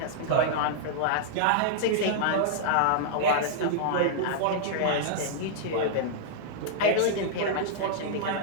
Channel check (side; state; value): both; different; correlation -0.01